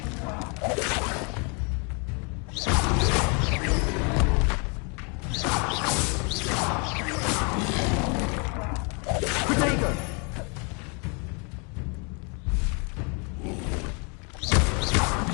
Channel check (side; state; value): right; quieter; 34.7 dB